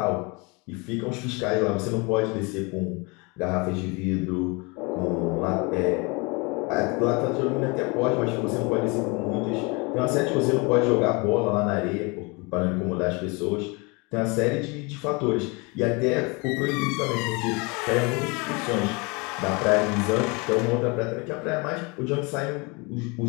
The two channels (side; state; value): right; quieter; 28.6 dB